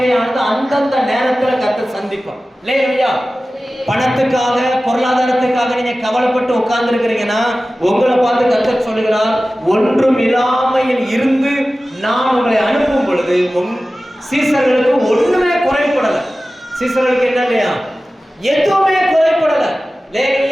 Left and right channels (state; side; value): normal; both; correlation 0.96